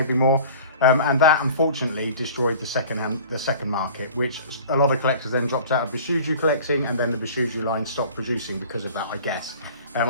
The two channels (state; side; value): inverted; both; correlation -0.43